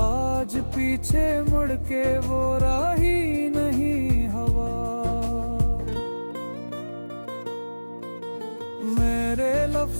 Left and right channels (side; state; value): both; inverted; correlation -1.00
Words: आज पीछे मुड़ के वो राही नहीं हवा। मेरे